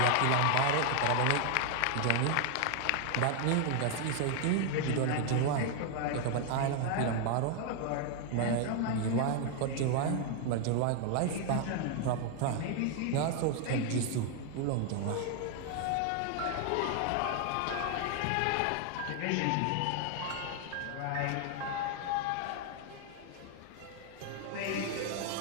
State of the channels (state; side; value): different; both; correlation 0.00